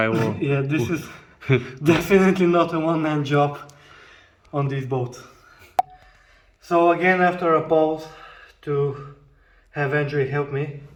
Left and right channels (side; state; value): both; identical; correlation 1.00